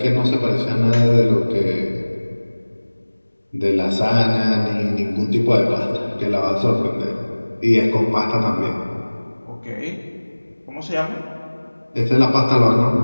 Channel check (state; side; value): inverted; both; correlation -1.00